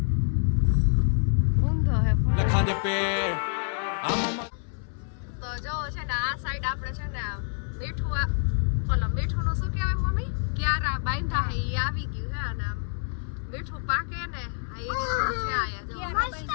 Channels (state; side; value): silent; right; 60 dB below the other